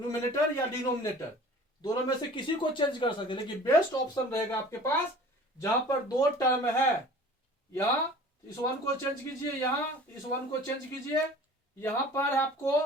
या डिनोमिनेटर दोनों में से किसी को चेंज कर सकते हैं, लेकिन बेस्ट ऑप्शन रहेगा आपके पास जहां पर दो टर्म है, यहां इस 1 को चेंज कीजिए, यहां इस 1 को चेंज कीजिए, यहां पर आपको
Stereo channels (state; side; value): normal; both; correlation 0.44